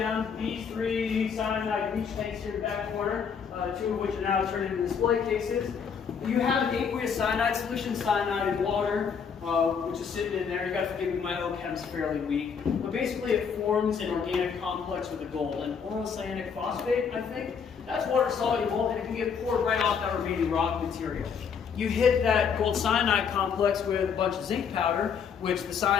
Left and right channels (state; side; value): quieter; right; 6.6 dB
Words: These 3 cyanide leach tanks here in the back corner, 2 of which are now turned into display cases. You have an aqueous cyanide solution, cyanide in water, which is sitting in there. You got to forgive me, my OChem's fairly weak. But basically it forms an organic complex with the gold. And orocyanic phosphate, I think, that's water soluble and it can get poured right off that remaining rock material. You hit that gold cyanide complex with a bunch of zinc powder, which the